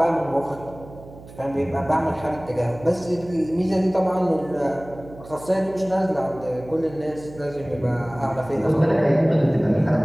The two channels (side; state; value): right; noise; hum, 18 dB below the sound